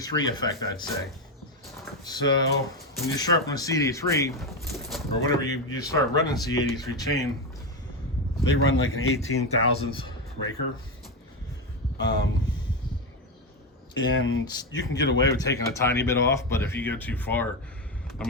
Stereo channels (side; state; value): both; normal; correlation 0.12